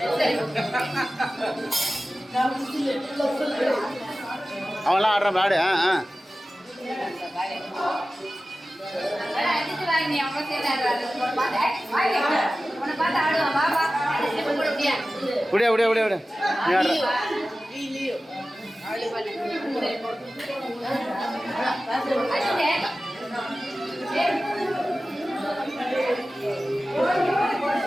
அவன்லாம் ஆடுறான் பாடு. விட விட விட விட. நீ ஆடுற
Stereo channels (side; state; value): both; normal; correlation 0.95